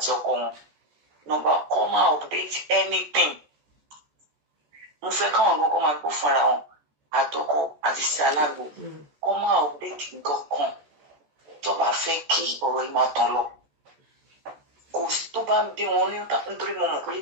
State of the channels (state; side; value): late; left; 14 ms